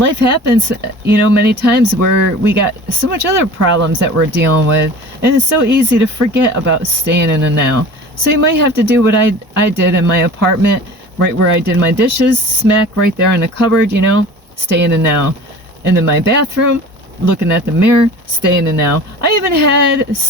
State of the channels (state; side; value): normal; both; correlation 0.40